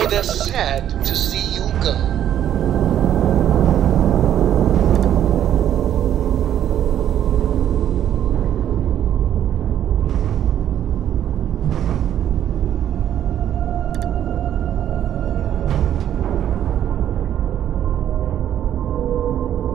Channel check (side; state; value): left; quieter; 10.6 dB